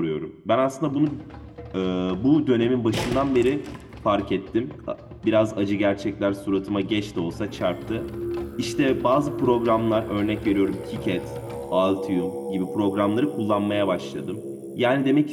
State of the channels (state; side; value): identical; both; correlation 1.00